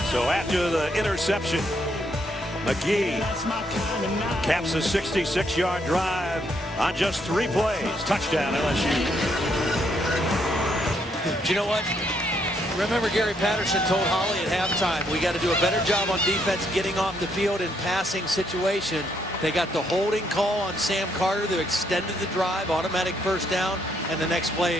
So after the interception, McGee caps a 66-yard drive on just 3 plays. Touchdown, LSU. Do you know what? Remember, Gary Patterson told Holly at halftime, we got to do a better job on defense getting off the field in passing situation. They got the holding call on Sam Carter that extended the drive, automatic first down, and the next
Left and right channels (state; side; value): normal; both; correlation 0.73